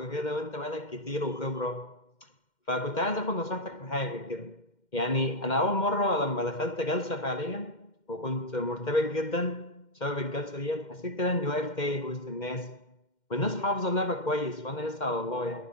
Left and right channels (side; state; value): right; late; 2.1 ms